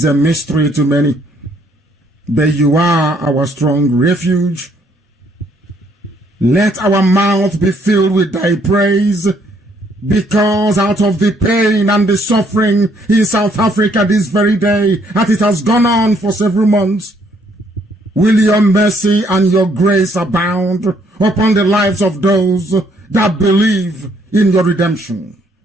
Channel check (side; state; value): both; normal; correlation 0.67